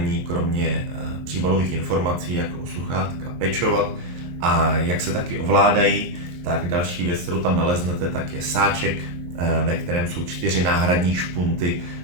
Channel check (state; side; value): late; left; 23 ms